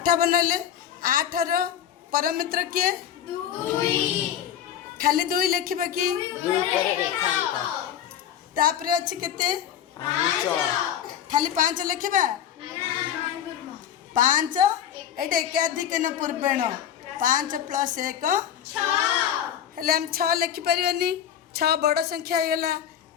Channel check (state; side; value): quieter; right; 9.8 dB